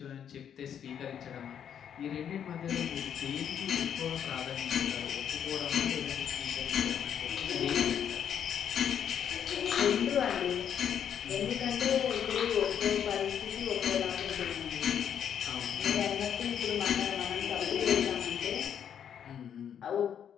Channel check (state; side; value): quieter; right; 8.7 dB